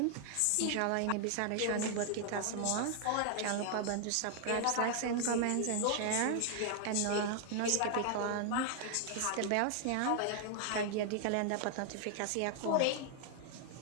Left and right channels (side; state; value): both; different; correlation 0.00